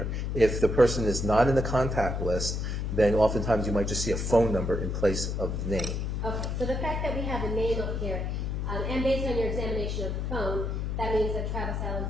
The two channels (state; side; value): noise; left; hum, 2 dB below the sound